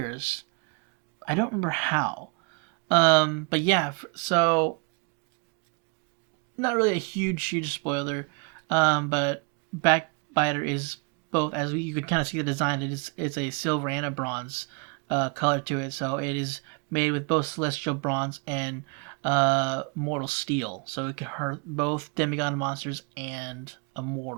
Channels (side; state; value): left; quieter; 33.2 dB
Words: I don't remember how. But yeah, so not really a huge spoiler. But Backbiter is both, as you could kind of see the design, it's a silver and a bronze color to it. So it is made with both celestial bronze and mortal steel. So it can hurt both demigod monsters and a